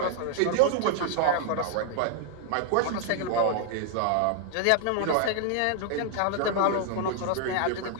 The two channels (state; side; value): different; both; correlation 0.00